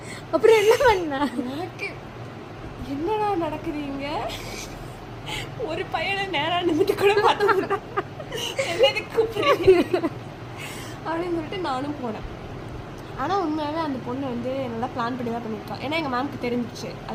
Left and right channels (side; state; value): both; identical; correlation 1.00